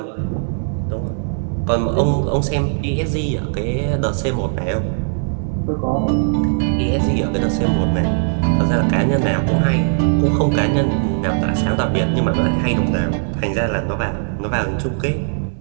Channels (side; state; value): left; silent; digital silence